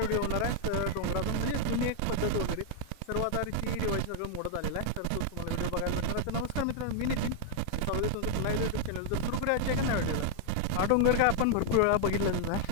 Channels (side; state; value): both; different; correlation 0.00